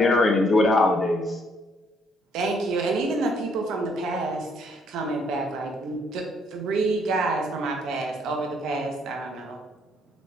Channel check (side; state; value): both; normal; correlation 0.68